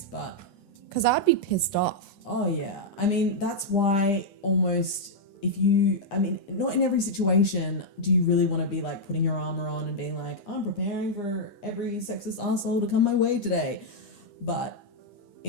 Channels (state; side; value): late; right; 9.9 ms